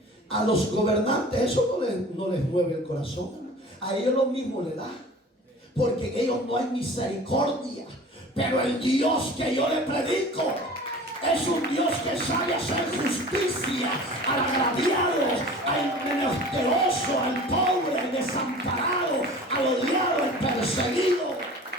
A los gobernantes eso no les mueve el corazón. A ellos lo mismo le da, porque en ellos no hay misericordia. Pero el Dios que yo le predico es un Dios que sabe hacer justicia al agraviado, al menesteroso, al pobre, al desamparado, al odiado, al perseguido.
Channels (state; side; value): normal; both; correlation 0.42